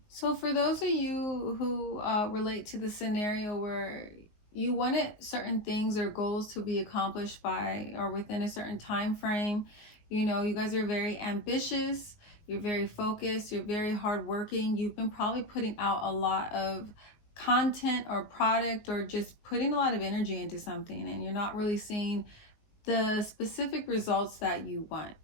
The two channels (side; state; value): right; late; 19 ms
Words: So for those of you who relate to the scenario where you wanted certain things or goals to be accomplished by or within a certain time frame, you guys are very ambitious, you're very focused, you're very hardworking. You've been probably putting out a lot of content or product, or just putting a lot of energy into something, and you're not really seeing the specific results that you